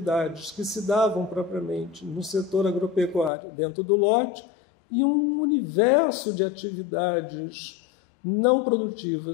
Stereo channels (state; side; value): drops out; right; at 3.3 s